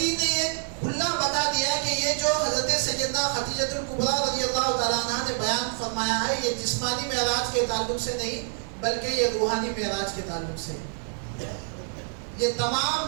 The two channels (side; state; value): left; silent; 60 dB below the other